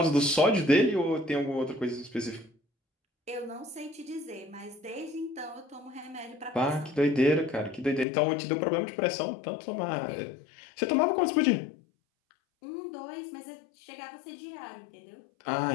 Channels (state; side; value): drops out; right; at 8.1 s